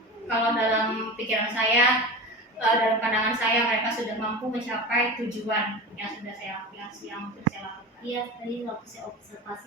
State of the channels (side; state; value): both; normal; correlation 0.29